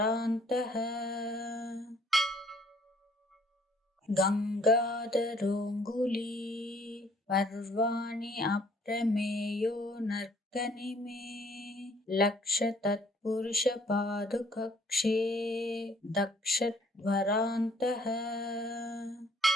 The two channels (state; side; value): normal; both; correlation 0.60